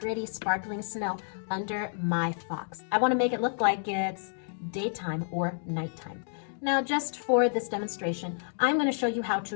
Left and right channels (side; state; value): right; silent; digital silence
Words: sparkling snow under my fox. I want to make it look like it's daytime or nighttime. Now, just for this demonstration, I'm going to show you how to